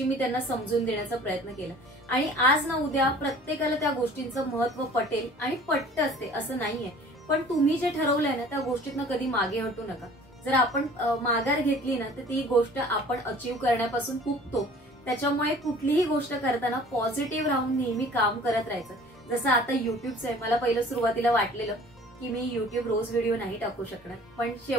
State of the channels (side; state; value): both; normal; correlation 0.49